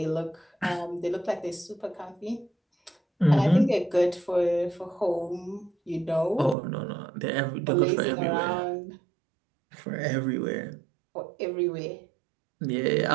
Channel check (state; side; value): drops out; left; at 6.6 s